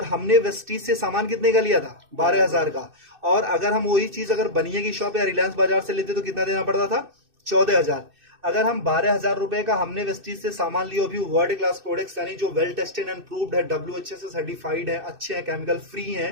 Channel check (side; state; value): left; late; 2.6 ms